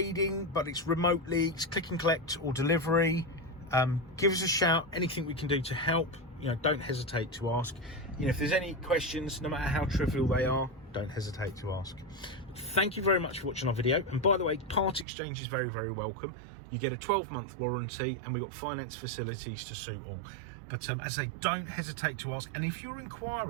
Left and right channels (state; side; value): drops out; left; at 15.1 s